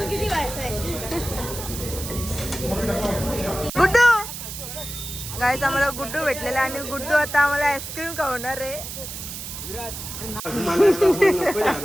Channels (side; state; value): right; noise; hiss, 8 dB below the sound